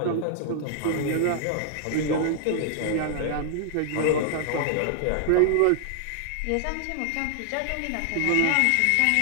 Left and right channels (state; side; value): different; both; correlation -0.01